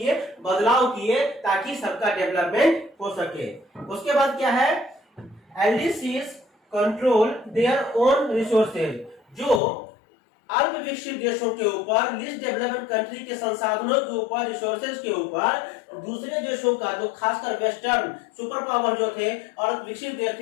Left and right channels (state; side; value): drops out; right; at 9.6 s